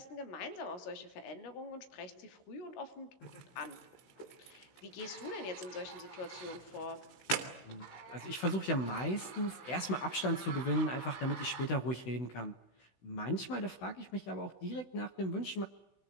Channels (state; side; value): late; right; 16 ms